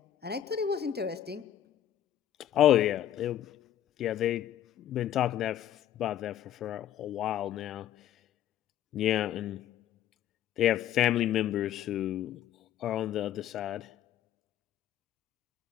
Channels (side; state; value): right; quieter; 11.1 dB